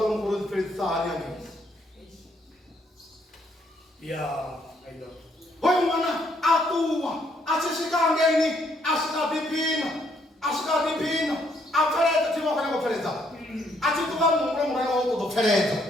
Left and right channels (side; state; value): both; normal; correlation 0.70